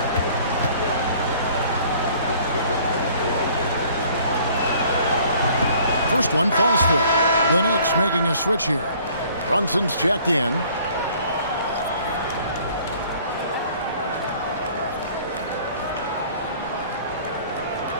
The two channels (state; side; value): inverted; both; correlation -0.55